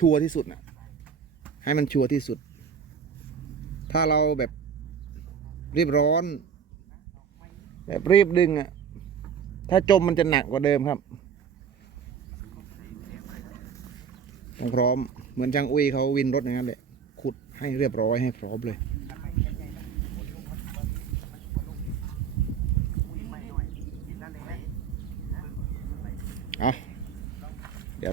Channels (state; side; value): quieter; left; 7.0 dB